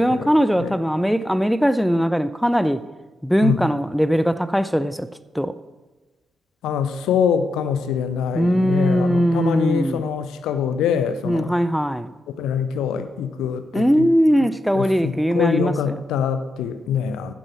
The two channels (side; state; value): both; normal; correlation 0.86